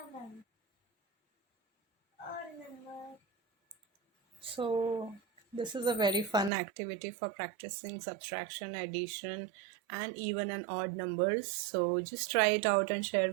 Odd number. So this is a very fun activity for practicing subtraction, addition, and even and odd numbers. So just try it out and share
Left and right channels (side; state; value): left; drops out; at 6.5 s